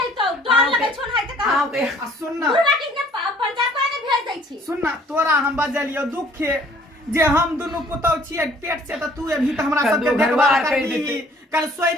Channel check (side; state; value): both; normal; correlation 0.57